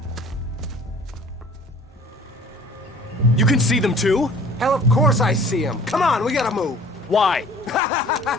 You can see them too? Hell, of course I see them. Come on, we gotta move. Why?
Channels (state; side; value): normal; both; correlation 0.49